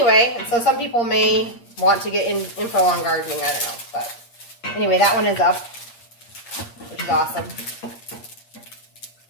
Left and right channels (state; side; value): late; right; 8.5 ms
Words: so some people may want to get info on gardening. I don't know, but anyway, that one is up, which is awesome.